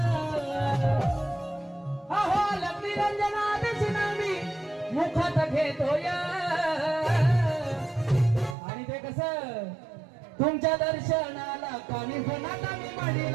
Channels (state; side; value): drops out; left; at 8.6 s